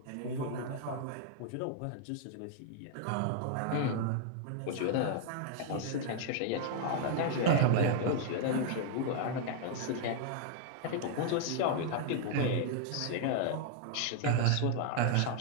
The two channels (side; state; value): both; different; correlation 0.00